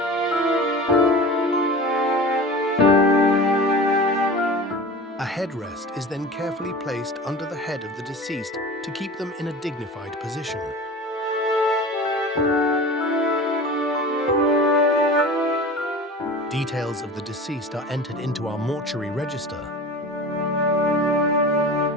A headrest is then carefully placed under the head of the deceased to keep them in a dignified position. Details of the deceased are entered into our mortuary register.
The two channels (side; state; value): both; normal; correlation 0.35